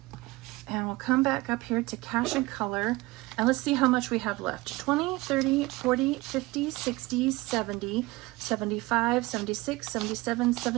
And we'll come back up here to cash and color, and let's see how much we have left. 20, 30, 40, 50, 60, 70, 75, 76, 77,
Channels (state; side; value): quieter; left; 21.3 dB